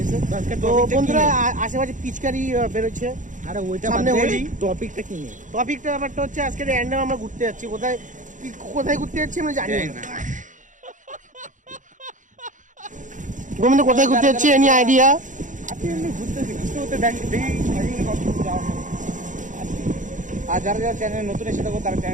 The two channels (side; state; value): left; late; 0.37 ms